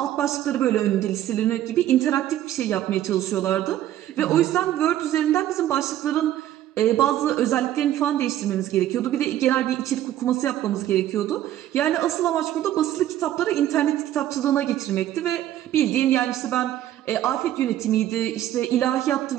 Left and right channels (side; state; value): left; quieter; 12.6 dB